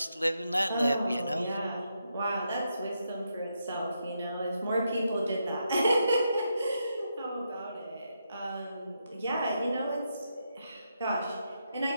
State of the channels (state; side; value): inverted; both; correlation -0.82